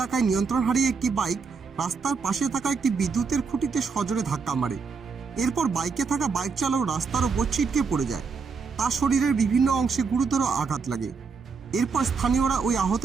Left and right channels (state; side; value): quieter; left; 5.2 dB